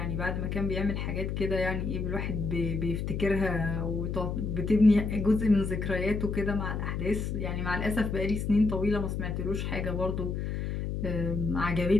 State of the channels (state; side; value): noise; left; hum, 2 dB below the sound